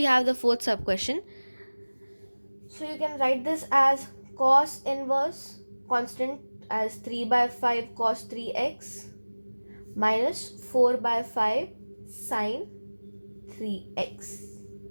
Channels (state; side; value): inverted; both; correlation -1.00